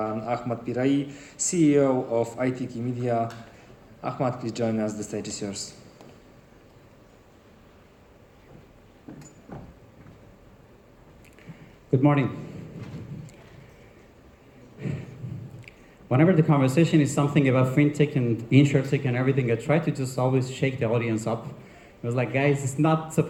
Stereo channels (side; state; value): both; identical; correlation 1.00